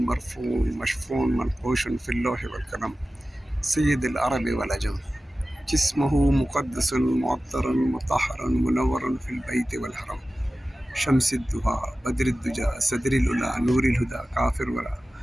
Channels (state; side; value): normal; both; correlation 0.95